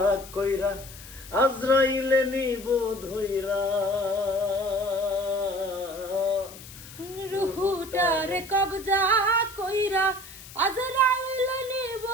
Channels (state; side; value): noise; left; hiss, 17 dB below the sound